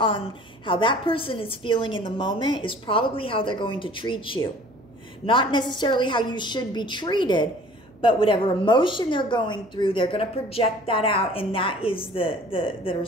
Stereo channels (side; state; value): right; noise; hum, 28 dB below the sound